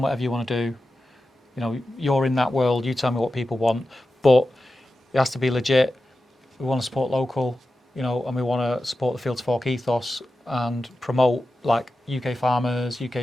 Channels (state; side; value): normal; both; correlation 0.92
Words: you want to do. You know, you're in that world. You tell me what people want, but it has to be legit. We want to support local, you know, and we want to support the field to fork ethos and promote like UK farmers,